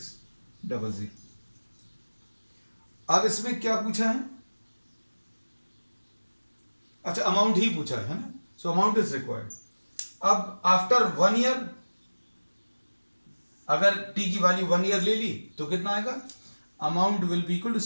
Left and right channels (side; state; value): both; inverted; correlation -1.00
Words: 00। अब इसमें क्या पूछा है, अच्छा अमाउंट ही पूछा है ना। So amount is required. अब आफ्टर 1 ईयर अगर t की वैल्यू 1 ईयर ले ली तो कितना आएगा, amount will be equal to